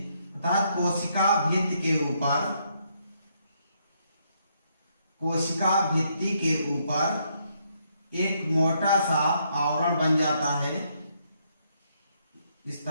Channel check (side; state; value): both; inverted; correlation -0.74